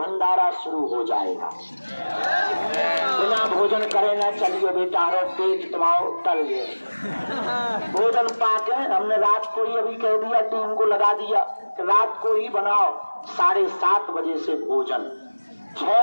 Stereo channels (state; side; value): inverted; both; correlation -1.00